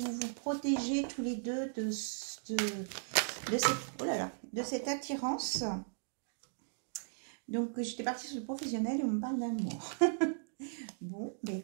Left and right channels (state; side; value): silent; left; digital silence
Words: vous protégez tous les deux de cette attirance. Donc, j'étais partie sur le professionnel et on me parle d'amour. Bon, ben